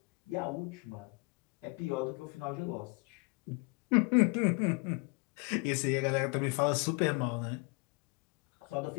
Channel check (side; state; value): right; quieter; 30.1 dB